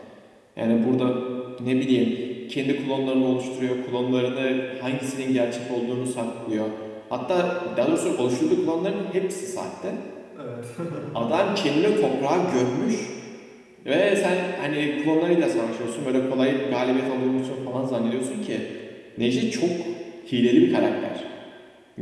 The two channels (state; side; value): identical; both; correlation 1.00